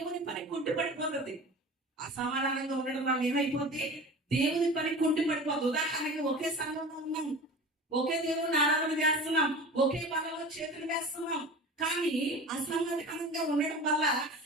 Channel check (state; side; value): normal; both; correlation 0.36